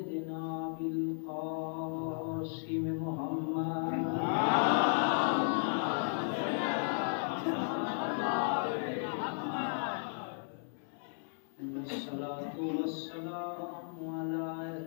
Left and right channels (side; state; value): right; silent; 55 dB below the other